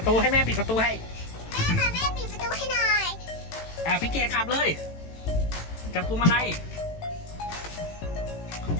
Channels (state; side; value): late; right; 18 ms